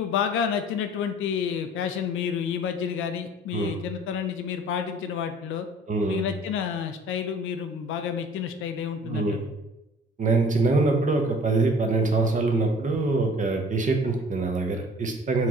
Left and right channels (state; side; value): normal; both; correlation 0.49